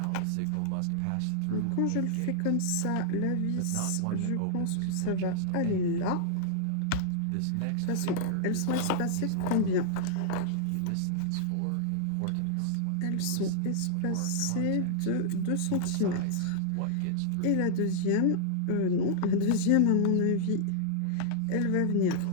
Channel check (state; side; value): different; both; correlation -0.01